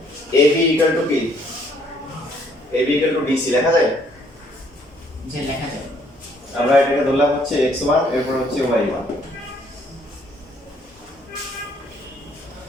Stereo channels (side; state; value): both; normal; correlation 0.65